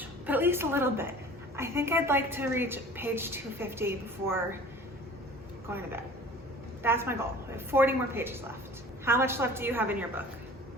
but at least a little bit. I think I'd like to reach page 250 before going to bed. That's my goal. I have 40 more pages left. How much left do you have in your book?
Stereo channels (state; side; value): normal; both; correlation 0.44